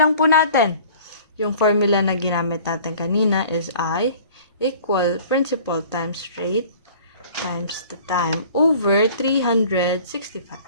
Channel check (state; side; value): inverted; both; correlation -0.48